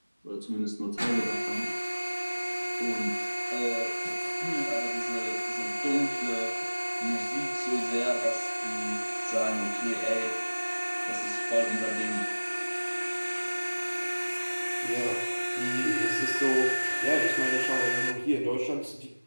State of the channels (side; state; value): both; inverted; correlation -1.00